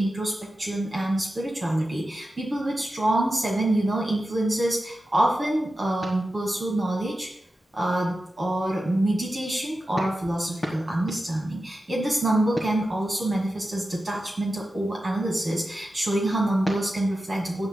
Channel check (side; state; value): both; normal; correlation 0.92